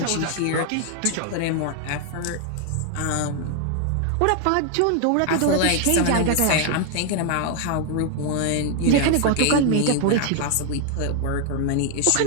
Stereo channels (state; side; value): different; both; correlation 0.00